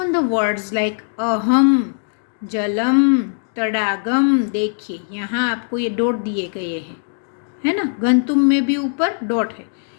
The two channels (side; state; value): right; silent; 66 dB below the other